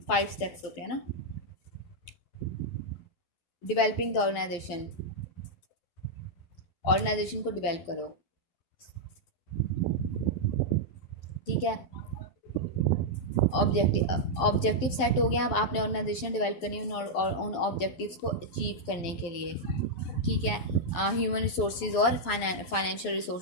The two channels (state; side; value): late; right; 11 ms